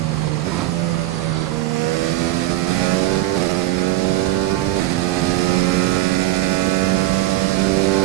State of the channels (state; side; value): quieter; left; 16.4 dB